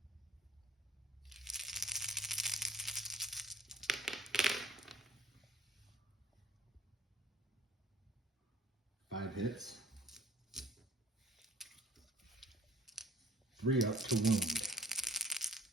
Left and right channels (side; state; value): both; normal; correlation 0.55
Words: Five hits. 3 up to wound.